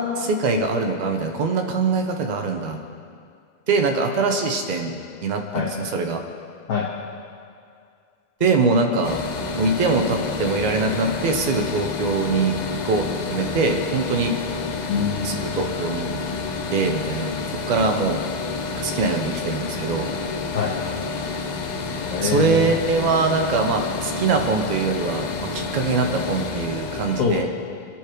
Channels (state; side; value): late; right; 2.0 ms